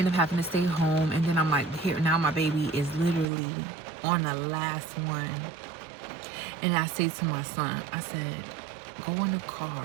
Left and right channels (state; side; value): drops out; left; at 3.2 s